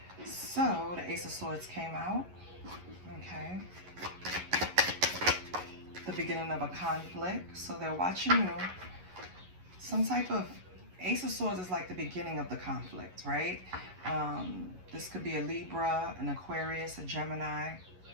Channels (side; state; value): left; late; 11 ms